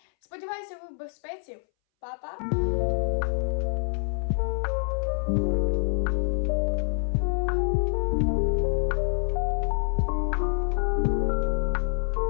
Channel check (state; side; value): silent; right; 60 dB below the other